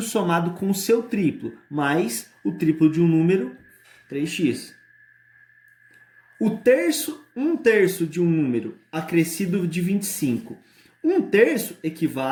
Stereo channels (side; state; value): both; identical; correlation 1.00